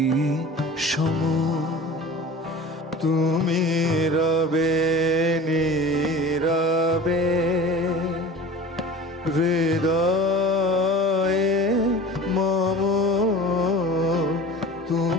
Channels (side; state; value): both; normal; correlation 0.39